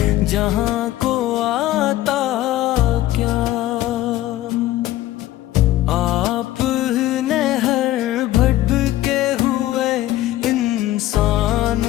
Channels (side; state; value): right; quieter; 15.0 dB